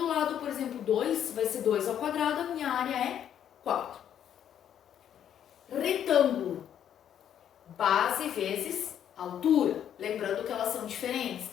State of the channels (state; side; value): quieter; right; 9.7 dB